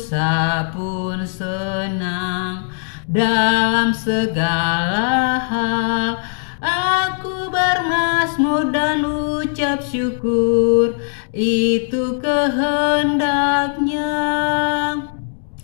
pun senang, dalam segala hal aku bermazmur dan ucap syukur, itu kehendaknya.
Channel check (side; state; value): right; silent; digital silence